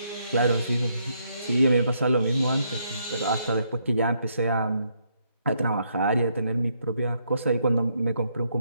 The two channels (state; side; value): inverted; both; correlation -0.75